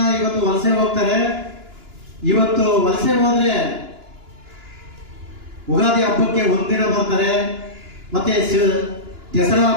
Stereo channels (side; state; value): left; late; 2.9 ms